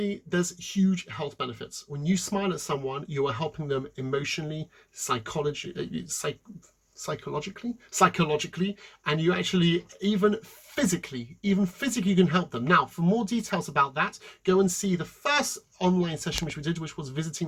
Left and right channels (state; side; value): identical; both; correlation 1.00